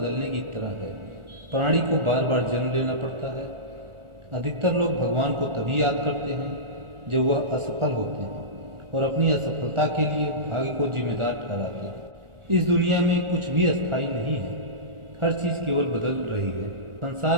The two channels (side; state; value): left; late; 1.4 ms